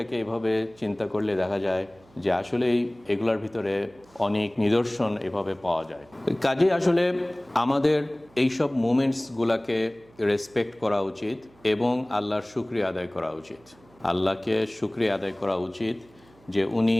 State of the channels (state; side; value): noise; right; hum, 28 dB below the sound